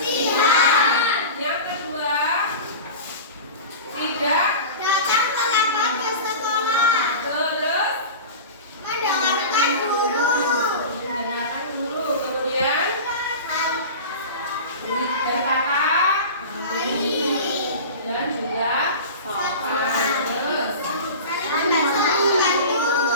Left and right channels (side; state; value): both; inverted; correlation -0.32